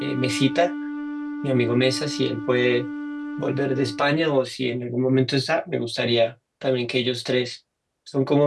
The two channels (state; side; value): identical; both; correlation 1.00